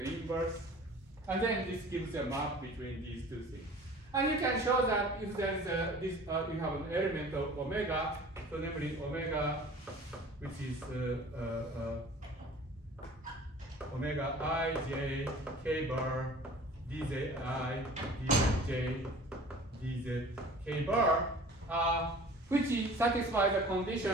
inverse. And then this gives a map between these two things. And you can show that if there is you have an element of omega, so namely omega, which is omega I j k bar dz I dz j dz k bar, which satisfies the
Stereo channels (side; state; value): both; normal; correlation 0.45